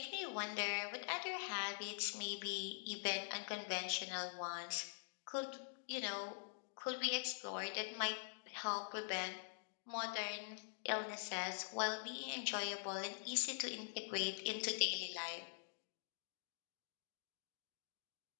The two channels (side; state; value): right; silent; digital silence